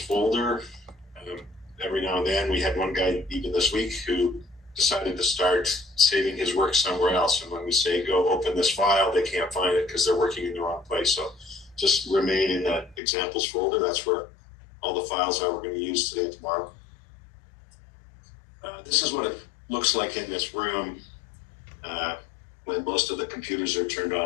Every now and then, we had one guy even this week who decided to start saving his work somewhere else. And when we say go open this file, they can't find it because they're working in the wrong place. So just remain in that examples folder. That's where all the files are we're going to use today and tomorrow. This is what it looks like in this room when most of the computers are turned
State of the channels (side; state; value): right; drops out; at 13.0 s